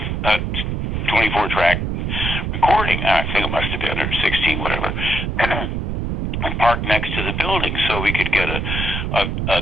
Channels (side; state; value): right; noise; rumble, 1 dB below the sound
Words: a 24-track recording. I think it must have been, or 16, whatever, and parked next to the building so we could get a